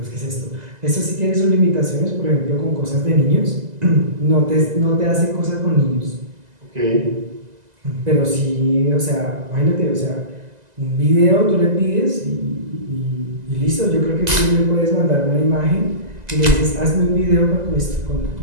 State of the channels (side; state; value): left; late; 2.0 ms